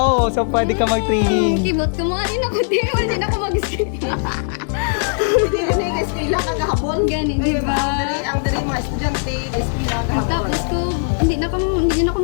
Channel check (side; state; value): right; silent; digital silence